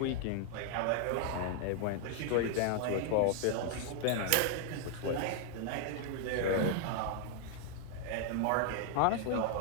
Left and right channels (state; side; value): different; both; correlation 0.00